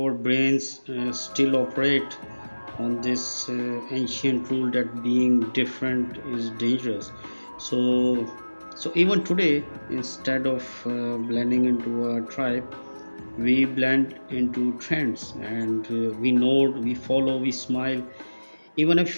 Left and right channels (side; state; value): both; inverted; correlation -1.00